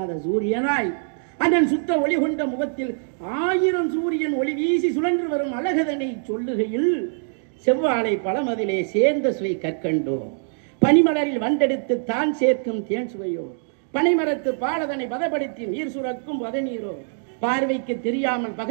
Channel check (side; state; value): left; silent; digital silence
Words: சூரியனாய் அதன் சுத்த ஒளி கொண்ட முகத்தில் 1000 சூரியன் ஒளி வீசி சுழன்று வரும் அழகதனை சொல்லுகையில் செவ்வாழை பழமதிலே சேர்ந்த சுவை கற்கண்டோ, பனிமலரில் வண்டெடுத்து தான் சேர்க்கும் தேன் சுவையோ, பனைமரத்து பாலதனை பதப்படுத்தி நீர் சுரக்கும் பதநீரோ, பார்வைக்கு தெரியாமல்